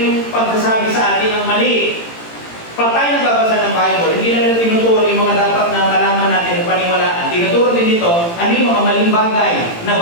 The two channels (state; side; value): late; right; 18 ms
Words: pagsasabi sa atin ng mali. Pag tayo nagbabasa ng Bible, hindi lang natin tinuturo yung mga dapat na malaman natin at paniwalaan. Tinuturo din dito, ano yung mga maling bagay na